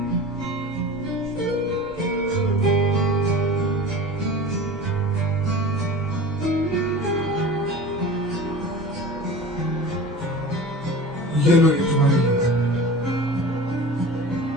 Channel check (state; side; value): normal; both; correlation 0.36